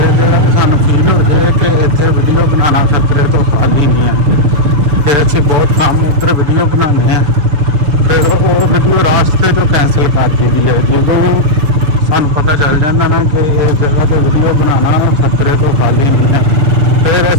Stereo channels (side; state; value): left; late; 6.9 ms